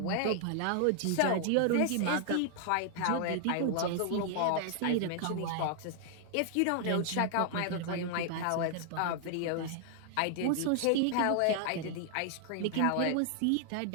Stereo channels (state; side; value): different; both; correlation 0.00